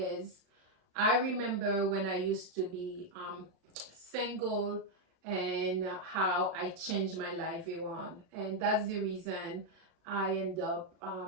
I remember when I used to be single and how I changed my life around. And that's the reason I end up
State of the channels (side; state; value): left; late; 36 ms